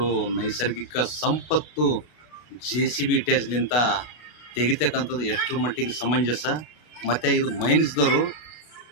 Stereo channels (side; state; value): right; late; 33 ms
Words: ನೈಸರ್ಗಿಕ ಸಂಪತ್ತು JCB ಇಟ್ಯಾಜ್ಲಿಂತ ತೆಗಿತಕ್ಕಂಥದ್ದು ಎಷ್ಟರ ಮಟ್ಟಿಗೆ ಸಮಂಜಸ. ಮತ್ತು ಇದು ಮೈನ್ಸ್ದವರು,